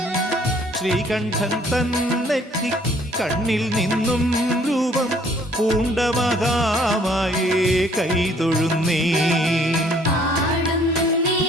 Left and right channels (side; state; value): both; normal; correlation 0.60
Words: ശ്രീകണ്ഠൻ തന്നെത്തി കണ്ണിൽ നിന്നും രൂപം പൂണ്ട മഹാമായേ കൈതൊഴുന്നേ.